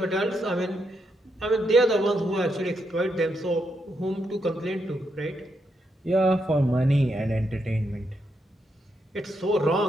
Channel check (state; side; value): normal; both; correlation 0.81